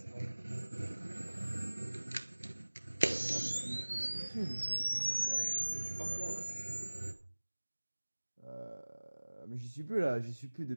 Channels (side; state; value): both; inverted; correlation -1.00